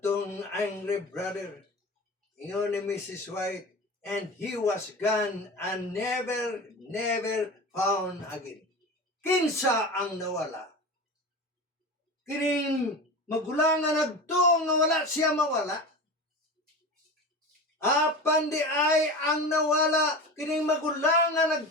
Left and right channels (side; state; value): both; normal; correlation 0.29